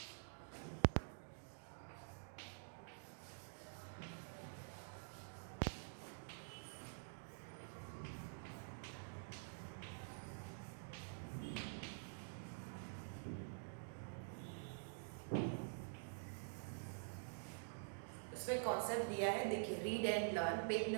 उसमें कॉन्सेप्ट दिया है, देखिए, read and learn, page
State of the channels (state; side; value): silent; left; digital silence